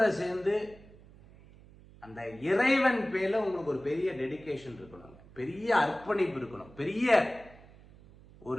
சேர்ந்து அந்த இறைவன் பேர்ல உங்களுக்கு ஒரு பெரிய டெடிகேஷன் இருக்கணும், பெரிய அர்ப்பணிப்பு இருக்கணும், பெரிய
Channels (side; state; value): right; noise; hum, 22 dB below the sound